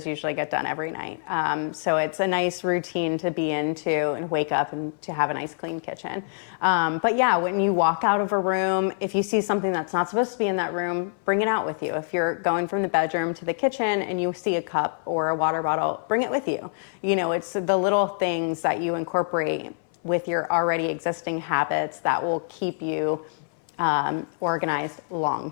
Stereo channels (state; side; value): silent; right; 59 dB below the other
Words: usually get done every night. So it's a nice routine to be into and wake up and to have a nice clean kitchen. But yeah, when you walk out of a room, if you see something that's not supposed to be in that room, bring it out with you. If you're going from the bedroom to the kitchen and you see a cup or a water bottle, bring it with you. You know, it's the little things that you incorporate with your already existing habits that will keep you organized long